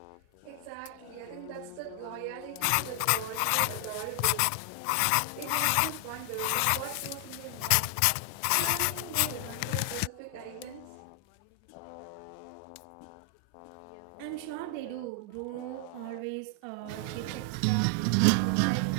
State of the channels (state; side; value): different; both; correlation 0.00